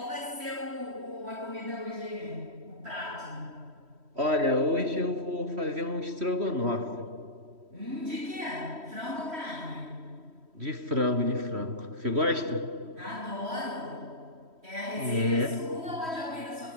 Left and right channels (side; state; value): left; late; 3.1 ms